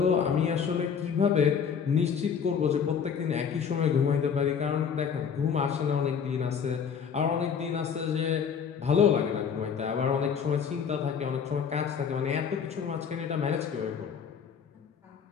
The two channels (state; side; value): quieter; right; 7.0 dB